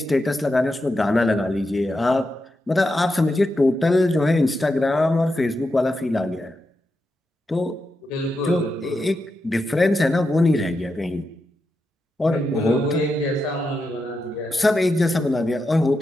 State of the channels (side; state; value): both; normal; correlation 0.87